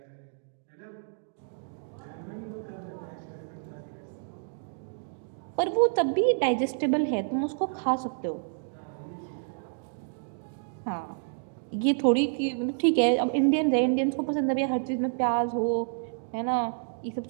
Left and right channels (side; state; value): left; silent; digital silence